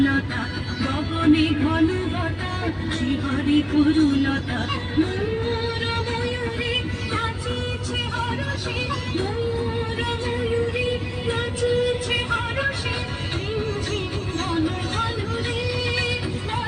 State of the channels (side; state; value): both; identical; correlation 1.00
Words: গগনে ঘন ঘটা শ্রীহরি তরুলতা ময়ূর ময়ূরী নাচিছে হরষে ময়ূর ময়ূরী নাচিছে হরষে ঝিম ঝিম ঘন ঘন রে